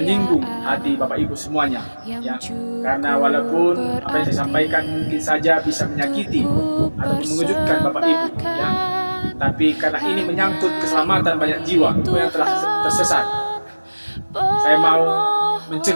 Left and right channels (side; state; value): both; inverted; correlation -1.00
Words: hati Bapak Ibu semuanya, ya. Karena walaupun apa yang saya sampaikan mungkin saja bisa menyakiti atau mengejutkan Bapak Ibu, ya. Tapi karena ini menyangkut keselamatan banyak jiwa yang telah tersesat, saya mau